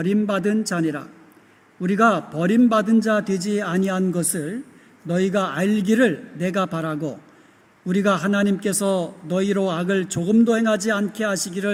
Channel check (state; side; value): identical; both; correlation 1.00